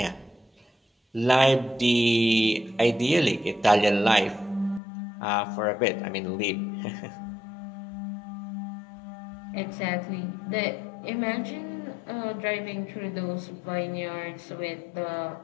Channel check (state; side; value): drops out; right; at 4.8 s